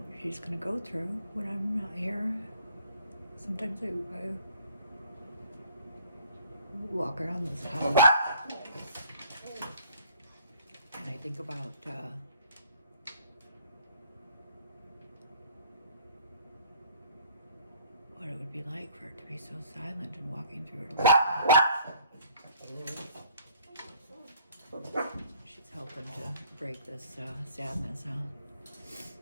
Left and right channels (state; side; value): inverted; both; correlation -0.56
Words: what she's gonna go through when I'm not here. Sometimes I walk around this house and I think about what it would be like for it to be so silent and walking through it alone. She's helping to break this sadness, huh?